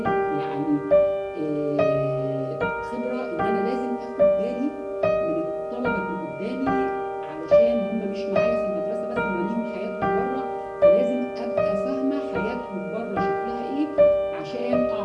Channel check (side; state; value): both; identical; correlation 1.00